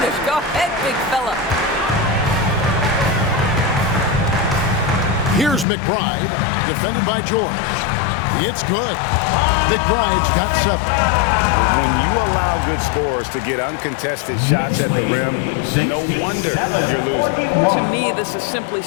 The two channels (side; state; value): right; drops out; at 5.7 s